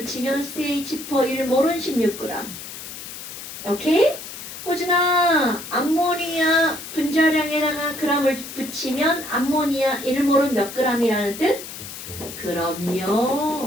CH4 1몰은 16g. 오케이? 호준아, 암모니아 분자량에다가 그람을 붙이면 암모니아 1몰은 몇 g이라는 뜻? 17.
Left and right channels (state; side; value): noise; left; hiss, 11 dB below the sound